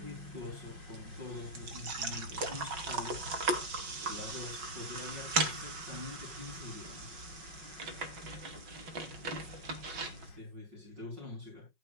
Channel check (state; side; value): late; left; 5.4 ms